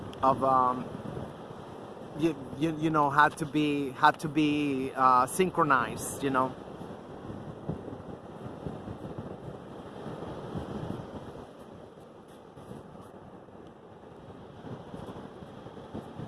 you know, had to be synchronized, you know.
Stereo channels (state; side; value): identical; both; correlation 1.00